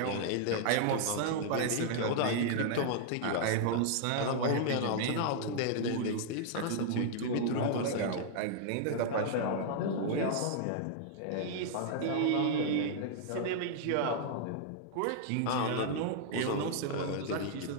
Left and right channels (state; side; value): different; both; correlation -0.01